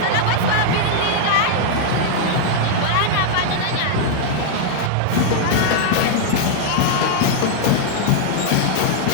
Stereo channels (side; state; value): both; different; correlation -0.01